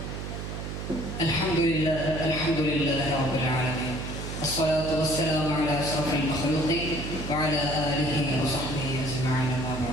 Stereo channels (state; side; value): noise; right; hum, 6 dB below the sound